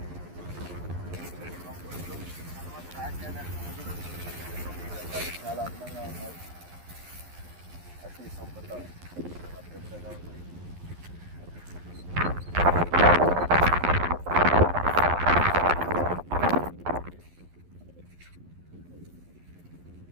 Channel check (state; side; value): late; left; 11 ms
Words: చాలా అందంగా ఉన్నాయి. అతి సంపద పెద్దగా ఉంది.